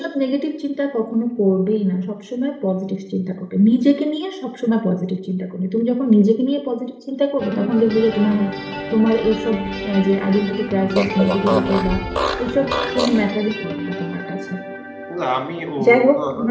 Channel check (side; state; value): both; identical; correlation 1.00